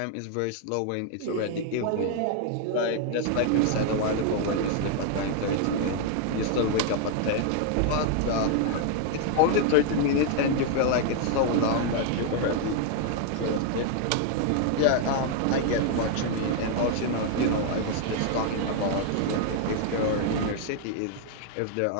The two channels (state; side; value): different; both; correlation 0.00